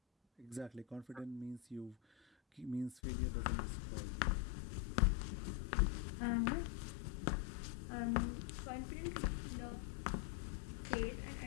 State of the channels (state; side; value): drops out; right; at 3.0 s